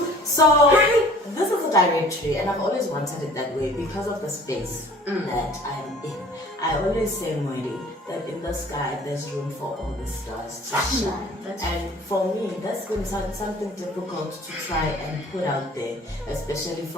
So this is a directory, and I've always wanted it that way because of the space that I'm in. I always say, Moedi, that in the sky there's room for all the stars to shine. And for me, that's been something difficult to try and put out there, especially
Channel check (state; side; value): normal; both; correlation 0.49